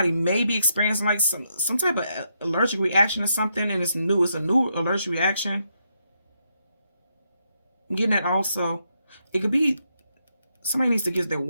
may be experiencing like some type of allergic reaction or something, and it's new. It's a new allergic reaction. I'm getting that also. It could be somebody needs to get their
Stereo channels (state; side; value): inverted; both; correlation -0.80